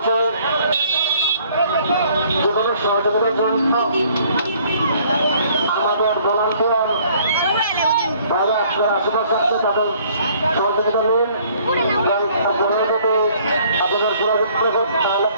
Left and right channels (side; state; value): both; inverted; correlation -0.59